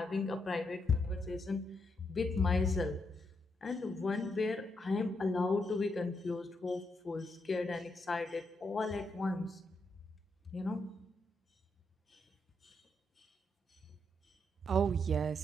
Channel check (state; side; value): normal; both; correlation 0.80